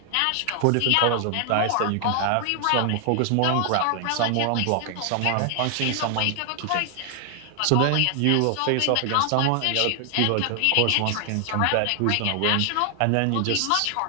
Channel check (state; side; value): different; both; correlation 0.00